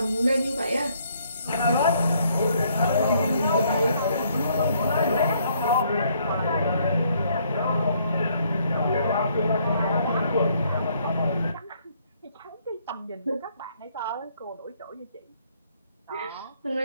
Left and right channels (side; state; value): both; inverted; correlation -0.67